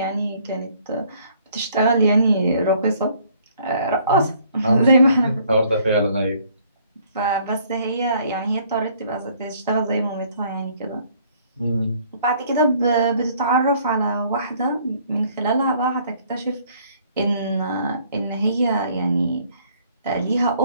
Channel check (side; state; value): both; inverted; correlation -0.61